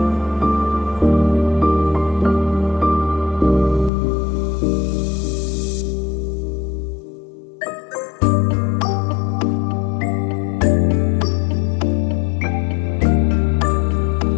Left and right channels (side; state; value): right; drops out; at 3.9 s